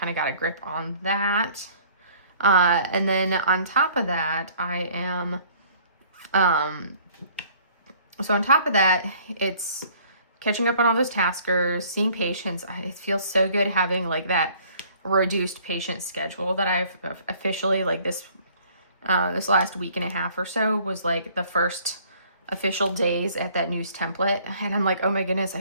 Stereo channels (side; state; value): both; inverted; correlation -0.56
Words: of got a grip on that. And then on top of that, I am, so on top of that, it's catching up on all those taskers, seeing patients. It feels so good having like that reduced patient schedule that I've officially, like this last week and a half or so was like the first official days at that news template. And I'm like, oh my goodness, I